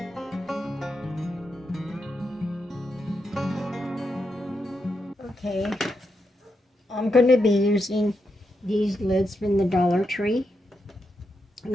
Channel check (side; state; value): both; normal; correlation 0.84